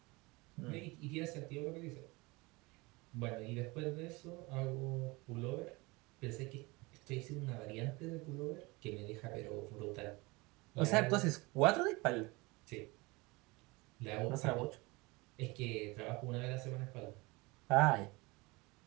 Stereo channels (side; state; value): left; quieter; 24.2 dB